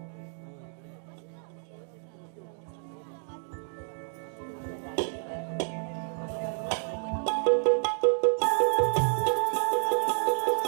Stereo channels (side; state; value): left; silent; 58 dB below the other